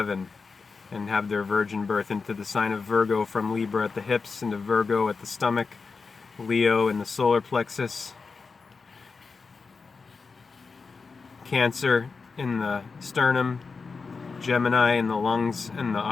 and have their virgin birth, into the sign of Virg-o from Libra at the hips, into Virg-o at the stomach, Leo in the solar plexus, Cancer in the sternum, Gemini in the lungs and the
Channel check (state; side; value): quieter; right; 4.7 dB